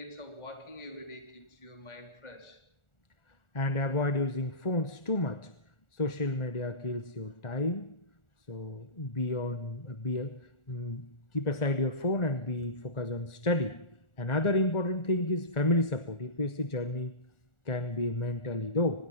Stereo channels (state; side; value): late; right; 1.4 ms